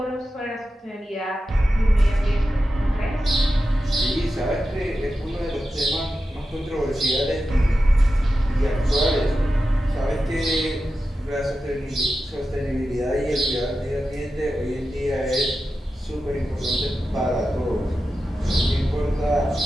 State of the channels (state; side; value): normal; both; correlation 0.91